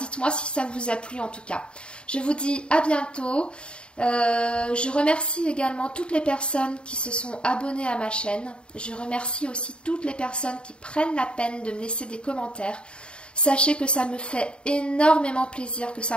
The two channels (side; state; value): right; late; 0.053 ms